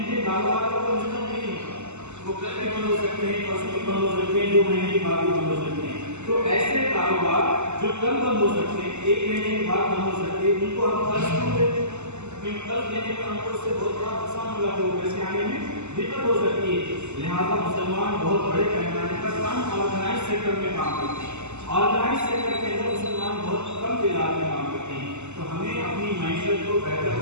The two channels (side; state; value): left; late; 0.83 ms